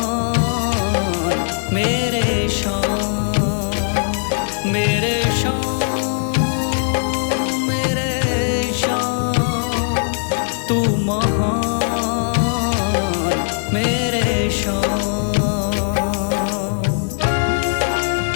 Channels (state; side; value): silent; right; digital silence